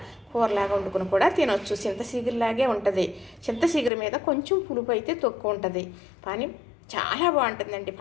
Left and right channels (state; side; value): drops out; right; at 3.9 s